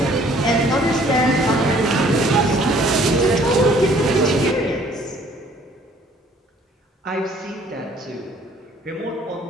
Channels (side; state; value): both; normal; correlation 0.58